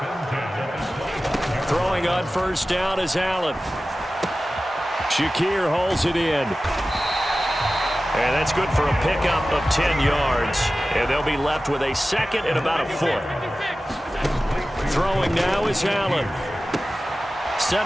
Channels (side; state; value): both; normal; correlation 0.95